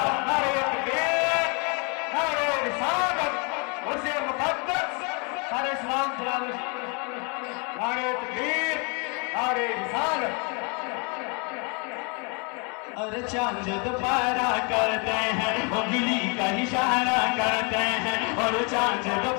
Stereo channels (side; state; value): right; quieter; 34.0 dB